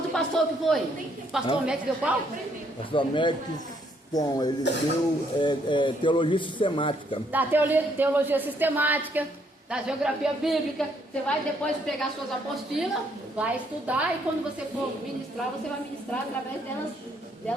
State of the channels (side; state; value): both; normal; correlation 0.70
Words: pastor que foi? O pastor Médici deu qual? Pastor Médici. Bom, ele deu teologia sistemática. Da teologia sistemática, da geografia bíblica. Você vai depois pegar suas apostilas, vai estudar e quando você for ministrar, você vai ministrar através